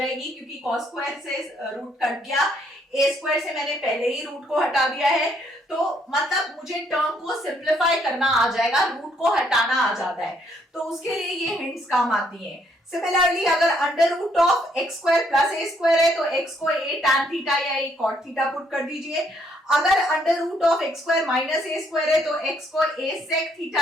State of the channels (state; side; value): normal; both; correlation 0.70